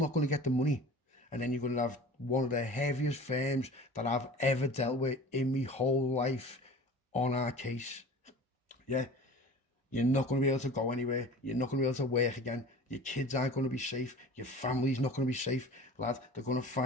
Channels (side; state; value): both; normal; correlation 0.40